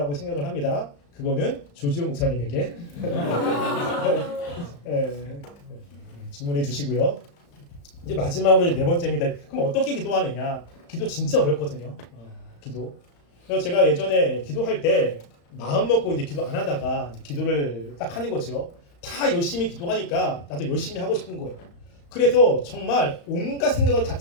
생각을 합니다. 그거는 조지호 목사님에게 질문해 주시고요. 이제 마지막으로 네 번째입니다. 그럼 어떻게 기도하느냐? 기도 진짜 어렵거든요. 기도. 그래서 제가 예전에 기도할 때 마음 먹고 이제 기도 안 하다가 이제 기도를 딱 하는 거죠. 다 열심히 기도하니까 나도 열심히 하고 싶은 거예요. 그래서 정말 온갖 생각을 다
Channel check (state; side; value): late; right; 35 ms